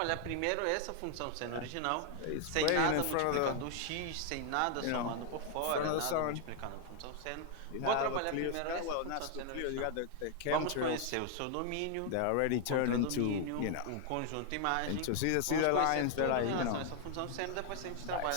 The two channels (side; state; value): both; different; correlation 0.00